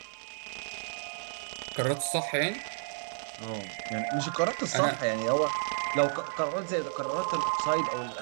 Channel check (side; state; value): left; silent; 57 dB below the other